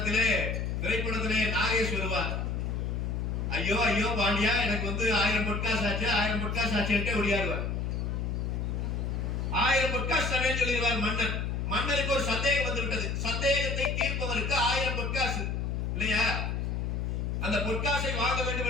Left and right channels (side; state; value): left; noise; hum, 1 dB below the sound